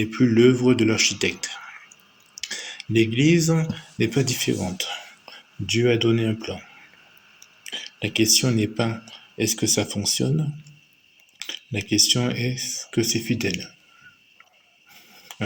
plus l'œuvre de l'architecte. L'Église n'est pas différente. Dieu a donné un plan. La question n'est pas est-ce que ça fonctionne? La question est est-ce que c'est fidèle?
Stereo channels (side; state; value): both; identical; correlation 1.00